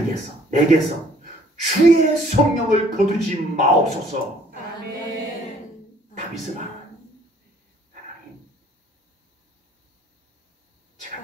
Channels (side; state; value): both; normal; correlation 0.59